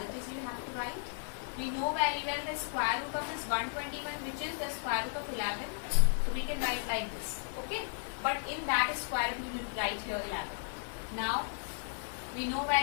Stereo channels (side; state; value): right; silent; digital silence